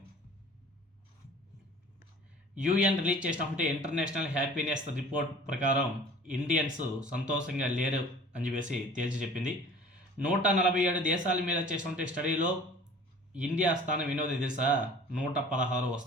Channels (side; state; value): both; normal; correlation 0.46